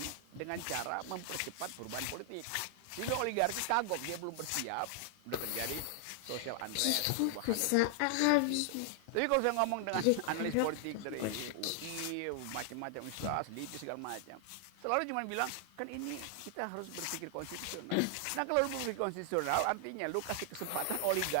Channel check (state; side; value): different; both; correlation 0.00